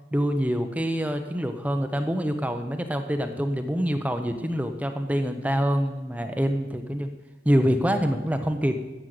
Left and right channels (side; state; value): both; normal; correlation 0.93